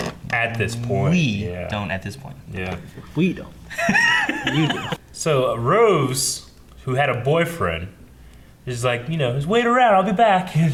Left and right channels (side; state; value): both; identical; correlation 1.00